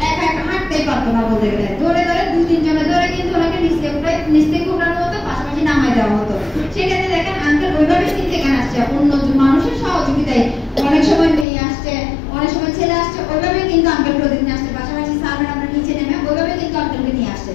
একা একা হাঁটতেই পারতো না বলতে গেলে, ধরে ধরে 2-3 জনে ধরে কিন্তু ওনাকে নিচ থেকে উঠানো হতো, পাশাপাশি নামাই দেওয়া হতো। সেক্ষেত্রে দেখেন আঙ্কেল ওইভাবে কিন্তু এখানে আসছে অন্য মানুষের সহযোগিতায়। অনেক সময় মেয়ে আসছে, অনেক সময় ছেলে আসছে, ওইভাবে কিন্তু আঙ্কেল প্রতিদিন আসছে, পাশাপাশি স্যাররা আমরা নিচে নেমে ওইভাবে কিন্তু আঙ্কেলকে নিয়ে আসছে।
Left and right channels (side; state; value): right; drops out; at 11.5 s